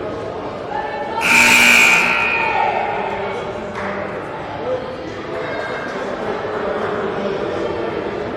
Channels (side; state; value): both; identical; correlation 1.00